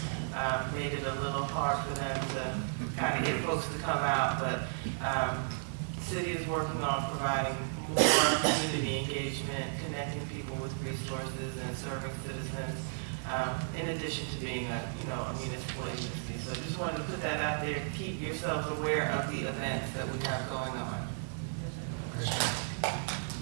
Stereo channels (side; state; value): left; silent; 55 dB below the other